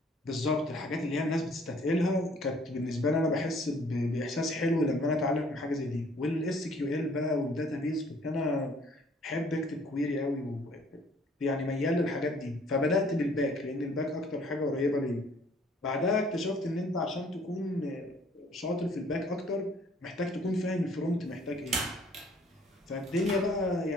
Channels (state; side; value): normal; both; correlation 0.58